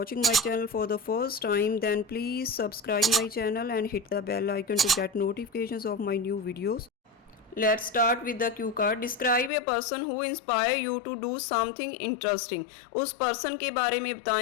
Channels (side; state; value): right; drops out; at 9.5 s